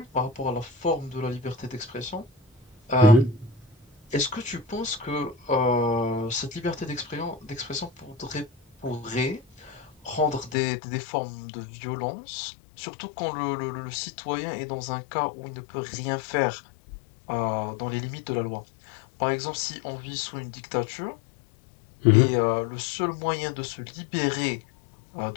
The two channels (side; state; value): right; drops out; at 10.6 s